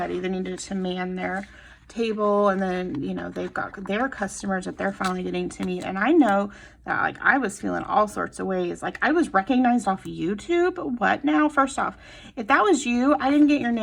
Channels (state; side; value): identical; both; correlation 1.00